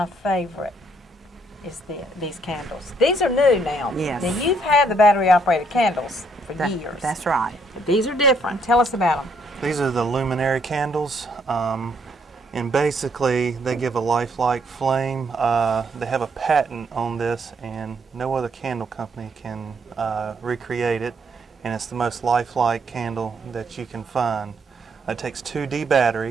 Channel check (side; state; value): both; normal; correlation 0.70